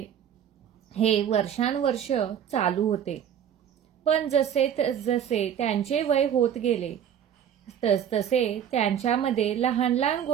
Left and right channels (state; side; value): quieter; left; 9.2 dB